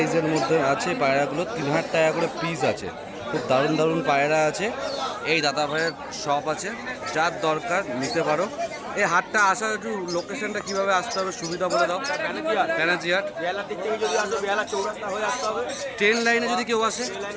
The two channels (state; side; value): identical; both; correlation 1.00